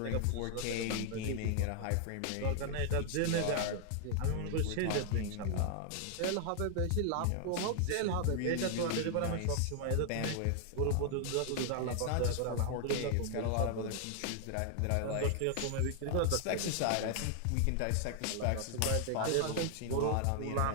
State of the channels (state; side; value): different; both; correlation 0.00